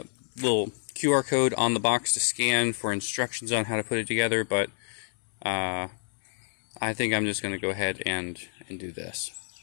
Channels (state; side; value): silent; right; 59 dB below the other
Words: little QR code on the box to scan for instructions on how to put it together, but I think I'm just going to go ahead and do this.